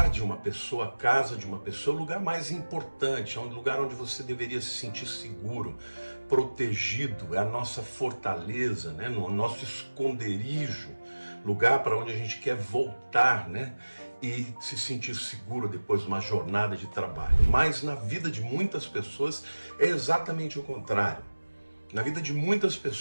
de uma pessoa, a casa de uma pessoa, é o lugar mais importante, é o lugar onde você deveria se sentir seguro, protegido, é a nossa fortaleza, né? O nosso esconderijo, lugar para onde a gente quer voltar, né? E se sentir seguro depois de uma jornada de trabalho. Mas na vida de muitas pessoas é exatamente o contrário. Na vida de muitas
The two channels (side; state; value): both; inverted; correlation -1.00